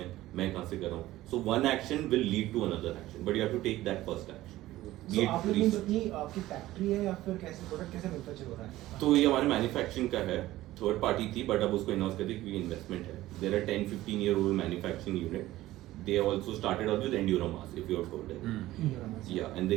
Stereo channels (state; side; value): quieter; left; 16.0 dB